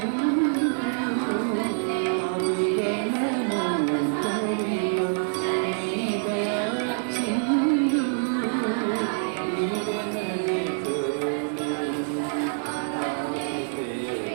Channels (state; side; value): silent; left; 61 dB below the other